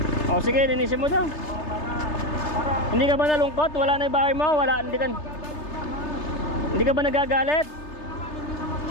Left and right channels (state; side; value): late; right; 3.3 ms